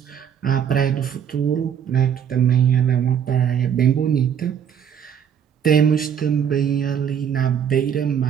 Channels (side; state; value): left; quieter; 8.4 dB